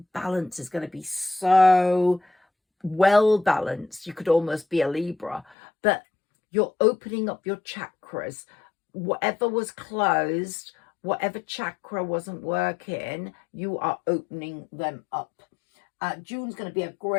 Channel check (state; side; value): drops out; right; at 5.6 s